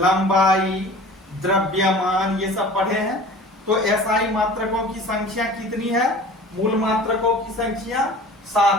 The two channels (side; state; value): both; normal; correlation 0.43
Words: द्रव्यमान, ये सब पढ़े हैं। तो एसआई मात्रकों की संख्या कितनी है, मूल मात्रकों की संख्या